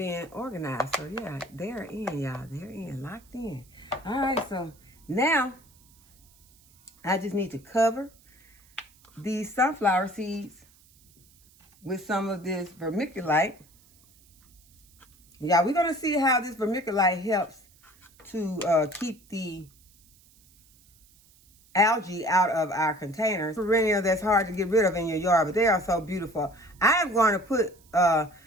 organized. So yeah, they're in, y'all. They're in, locked in. All right, so now I just need to cover these sunflower seeds with some of this vermiculite. Yeah, we're gonna see how this vermiculite helps to keep the algae out of our containers. Perennial that's hard to get rid of in your yard, but they are so beautiful. I am going to put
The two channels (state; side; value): noise; right; hiss, 29 dB below the sound